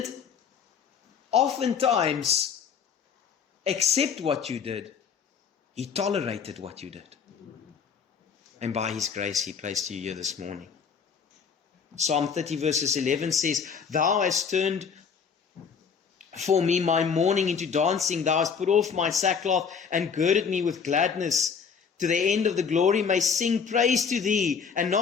oftentimes accept what you did. He tolerated what you did. And by his grace, he placed you here this morning. Psalm 30 verses 11 says, Thou hast turned for me my mourning into dancing. Thou hast put off my sackcloth and girded me with gladness. To the end of the glory may sing praise to thee and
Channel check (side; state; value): right; quieter; 6.4 dB